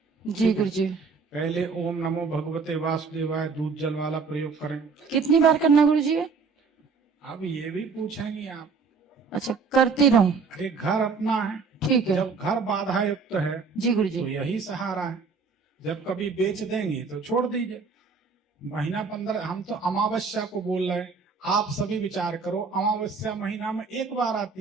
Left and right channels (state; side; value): quieter; left; 5.0 dB